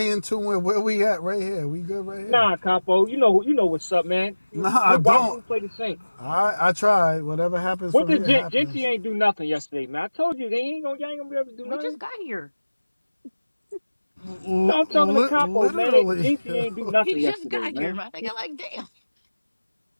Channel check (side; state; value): both; inverted; correlation -1.00